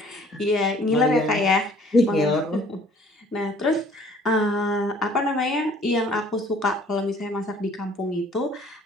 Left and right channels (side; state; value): both; normal; correlation 0.56